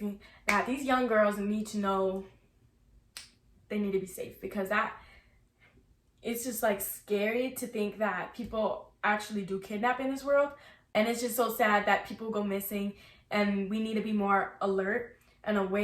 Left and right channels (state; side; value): identical; both; correlation 1.00